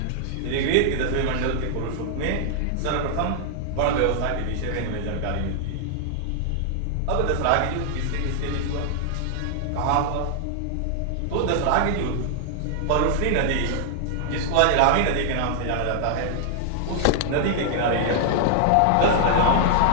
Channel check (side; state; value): both; different; correlation -0.01